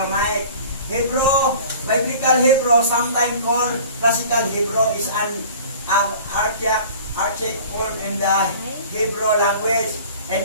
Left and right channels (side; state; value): both; inverted; correlation -0.45